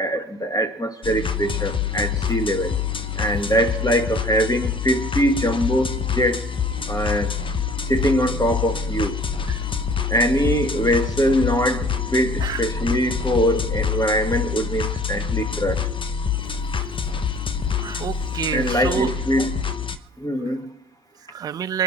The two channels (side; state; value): both; normal; correlation 0.51